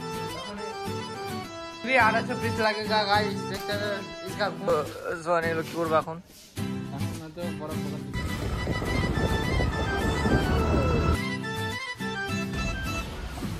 लगेगा गाइस। देखते हैं इसका सोने लो কি করব এখন তো বড় বড়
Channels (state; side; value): identical; both; correlation 1.00